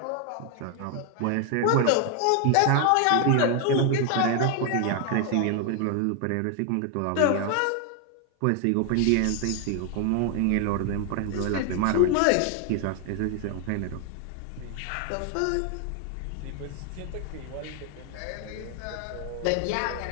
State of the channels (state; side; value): different; both; correlation 0.00